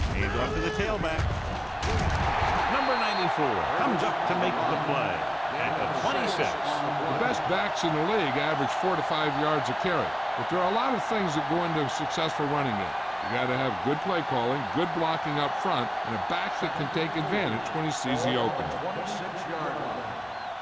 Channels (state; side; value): identical; both; correlation 1.00